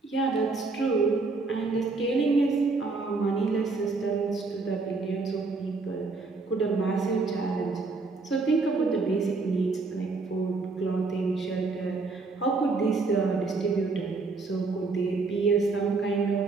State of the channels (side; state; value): left; quieter; 3.9 dB